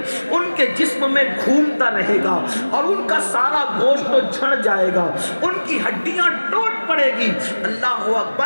ان کے جسم میں گھومتا رہے گا اور ان کا سارا گوشت تو جھڑ جائے گا، ان کی ہڈیاں ٹوٹ پڑے گی، اللہ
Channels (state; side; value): inverted; both; correlation -1.00